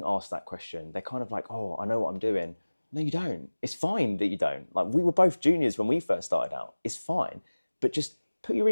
ask that question. They're kind of like, oh, I know what I'm doing. No, you don't. It's fine that you don't. Like, we were both juniors when we first started out. It's fine. But just put your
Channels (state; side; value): inverted; both; correlation -1.00